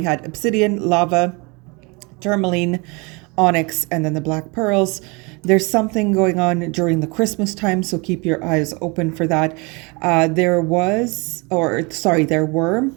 had obsidian, lava, tourmaline, onyx, and then the black pearls. There's something going on during the Christmas time, so keep your eyes open for that. There were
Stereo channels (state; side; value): quieter; left; 28.6 dB